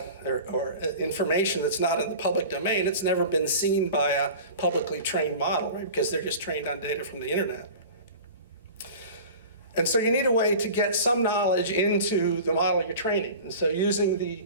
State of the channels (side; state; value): both; inverted; correlation -0.38